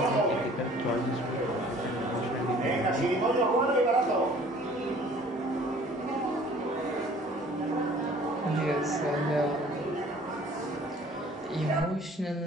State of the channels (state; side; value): normal; both; correlation 0.52